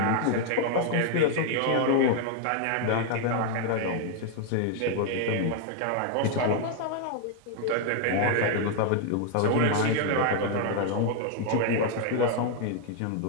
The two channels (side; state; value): both; different; correlation 0.00